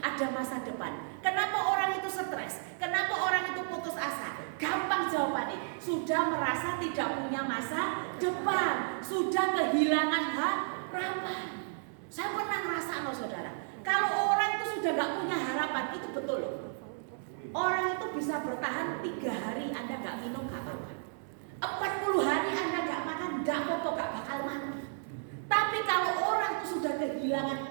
masa depan. Kenapa orang itu stres? Kenapa orang itu putus asa? Gampang jawabannya. Sudah merasa tidak punya masa depan, sudah kehilangan harapan. Saya pernah ngerasa loh saudara, kalau orang itu sudah gak punya harapan, itu betul loh. Orang itu bisa bertahan 3 hari Anda gak minum gak apa-apa, 40 hari Anda gak makan gak apa-apa, gak bakal mati. Tapi kalau orang itu sudah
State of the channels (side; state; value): left; silent; 56 dB below the other